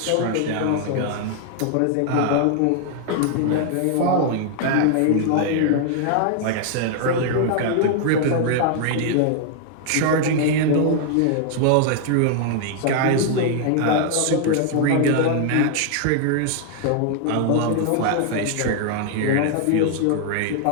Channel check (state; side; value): different; both; correlation 0.00